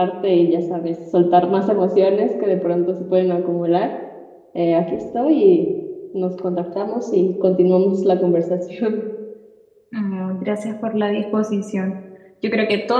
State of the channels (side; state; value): both; identical; correlation 1.00